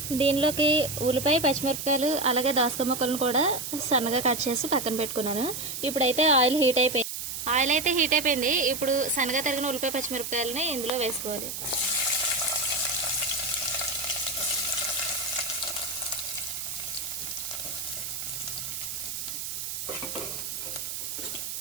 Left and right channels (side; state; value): right; noise; hiss, 5 dB below the sound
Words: దీనిలోకి ఉల్లిపాయ, పచ్చిమిరపకాయలు అలాగే దోసకాయ ముక్కలను కూడా సన్నగా కట్ చేసి పక్కన పెట్టుకున్నాను. ఇప్పుడైతే ఆయిల్ అయితే హీట్ అయిపోయింది. ఇప్పుడు సన్నగా తరిగిన ఉల్లిపాయ, పచ్చిమిరపకాయలని ఇందులో వేసుకోవాలి.